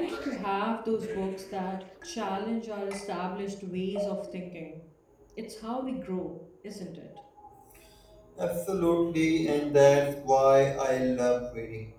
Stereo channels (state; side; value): identical; both; correlation 1.00